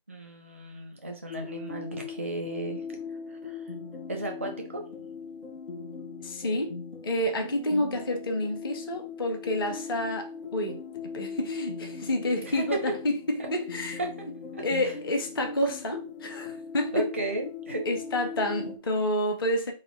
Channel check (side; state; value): both; inverted; correlation -0.43